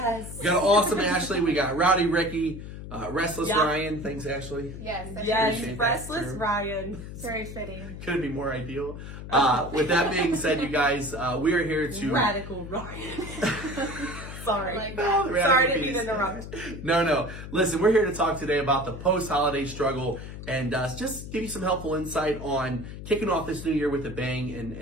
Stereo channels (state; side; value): noise; left; hum, 10 dB below the sound